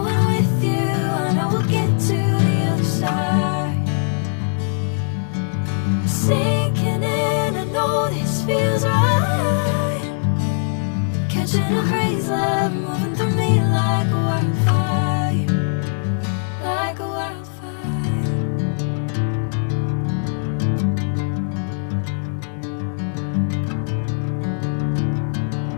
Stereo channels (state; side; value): silent; right; digital silence